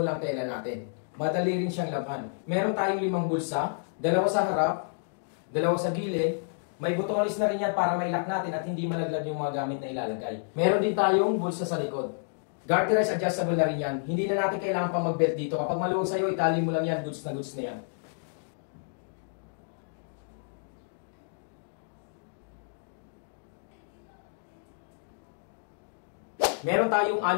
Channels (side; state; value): right; silent; digital silence